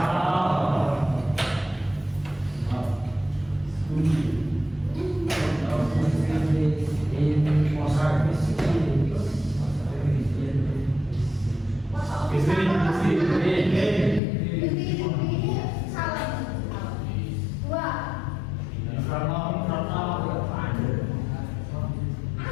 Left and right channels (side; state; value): right; drops out; at 14.2 s